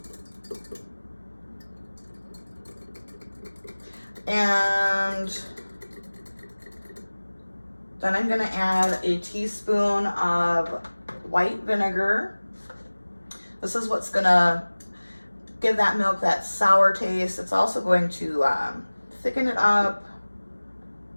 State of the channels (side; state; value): both; inverted; correlation -1.00